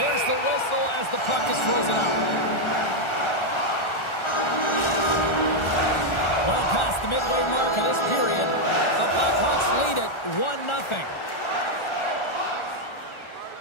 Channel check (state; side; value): late; right; 1.4 ms